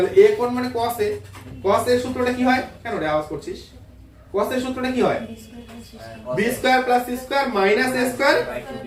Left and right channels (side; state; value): both; identical; correlation 1.00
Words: a কোণ মানে cos a। cos a এর সূত্রটা কি হয়? কেন রে আওয়াজ করছিস? cos a এর সূত্রটা কি হয়? b square plus c square minus a square